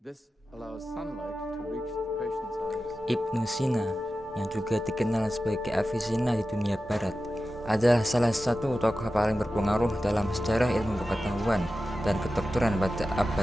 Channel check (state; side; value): normal; both; correlation 0.93